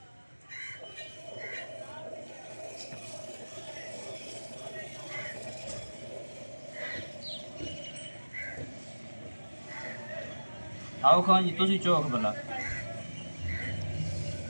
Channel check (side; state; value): both; inverted; correlation -1.00